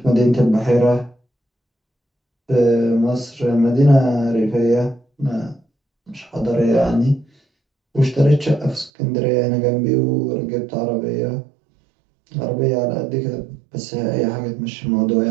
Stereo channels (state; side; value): drops out; left; at 8.9 s